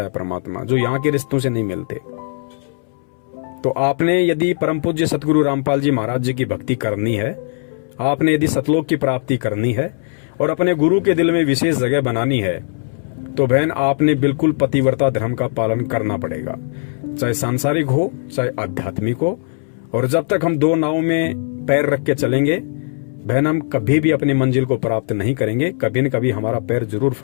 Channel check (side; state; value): right; silent; 66 dB below the other